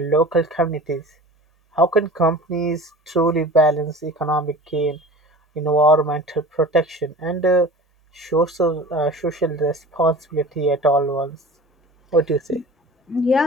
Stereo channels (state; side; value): normal; both; correlation 0.39